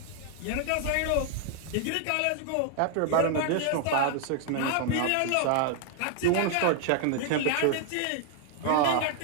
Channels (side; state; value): both; different; correlation 0.00